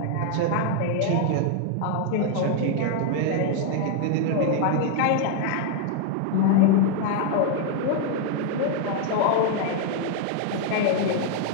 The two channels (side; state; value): both; different; correlation 0.00